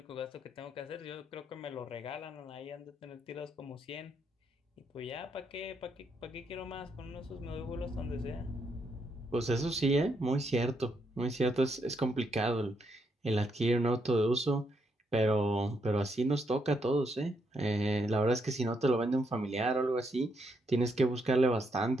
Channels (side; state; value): both; normal; correlation 0.77